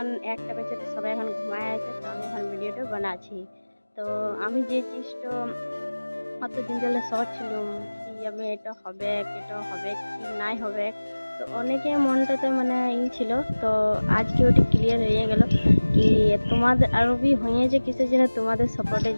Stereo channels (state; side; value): inverted; both; correlation -1.00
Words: একটা বেজে তো সবাই এখন ঘুমায় আছে, তো আমি এখন ভিডিওটা বানাচ্ছি। তো আমি যে জিনিসটা অতদিন ধরে ছিলাম কি আমি এটা হবে কি নাই হবে, তো অনেকে মনটাতে মানে ছিল। তো আজকে ওটা ক্লিয়ার হয়ে গেল কি তোমাদের আরও বি হয়েছে কিসের জন্য, তোমাদের সাপোর্টের